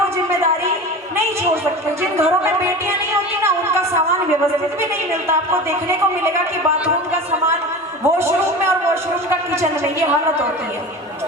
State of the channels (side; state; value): both; normal; correlation 0.32